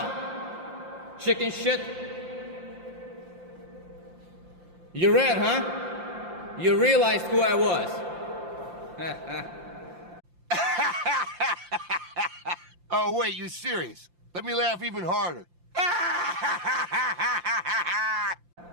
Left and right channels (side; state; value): left; late; 5.7 ms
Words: Chicken shit? You ran, huh? You realized who I was. Oh, wait, you serious? Let me laugh even harder.